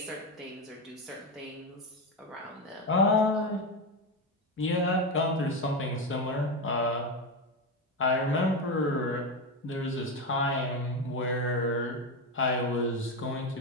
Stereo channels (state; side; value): normal; both; correlation 0.14